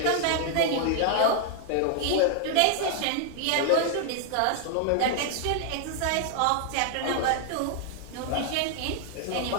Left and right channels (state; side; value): different; both; correlation 0.00